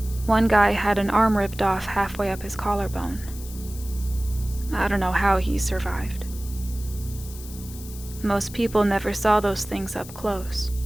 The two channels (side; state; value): left; noise; hiss, 16 dB below the sound